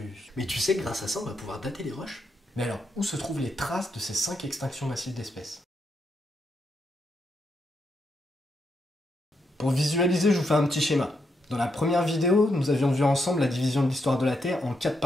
Mais tu sais que grâce à ça, on va pouvoir dater les roches. Mais alors, où se trouvent les traces de ces 5 extinctions massives d'espèces? Pour visualiser, je vous fais un petit schéma. Dans la première vidéo, nous avions vu ensemble la division de l'histoire de la Terre en 4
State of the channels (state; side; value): normal; both; correlation 0.81